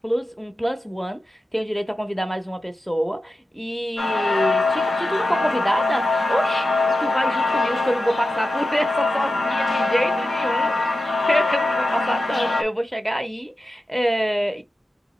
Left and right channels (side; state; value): both; normal; correlation 0.92